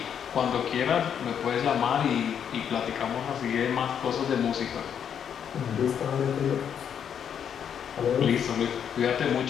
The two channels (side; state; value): right; quieter; 8.3 dB